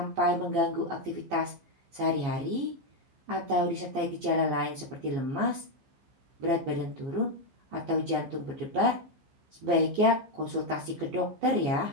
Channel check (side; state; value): left; late; 15 ms